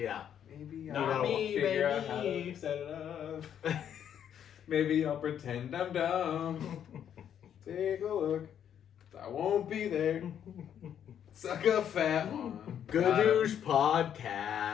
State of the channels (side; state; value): right; quieter; 9.3 dB